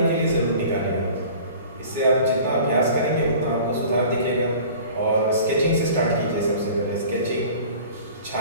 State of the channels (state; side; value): inverted; both; correlation -0.44